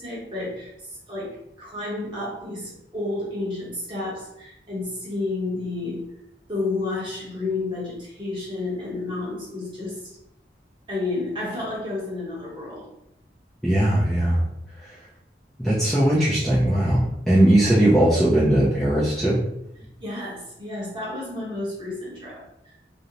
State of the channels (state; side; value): normal; both; correlation 0.82